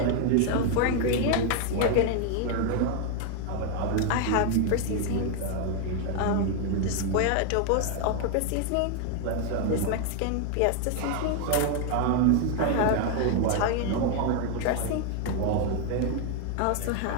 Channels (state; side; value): different; both; correlation 0.01